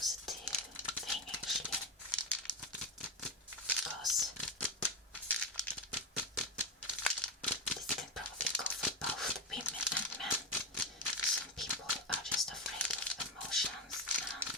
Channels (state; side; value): normal; both; correlation 0.12